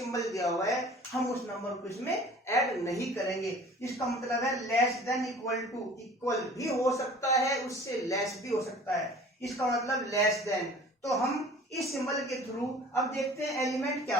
दिया हुआ है हम उस नंबर को इसमें ऐड नहीं करेंगे। इसका मतलब है less than equal to, equal भी हो सकता है उससे लेस भी हो सकता है, इसका मतलब लेस देन। तो हम इस सिंबल के थ्रू अब देखते हैं एलिमेंट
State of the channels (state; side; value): normal; both; correlation 0.46